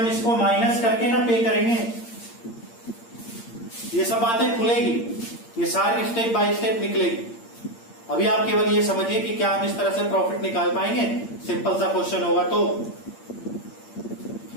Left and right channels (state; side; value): late; right; 8.7 ms